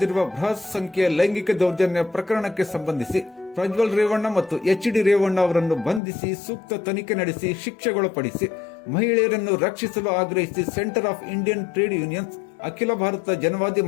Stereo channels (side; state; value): right; drops out; at 6.0 s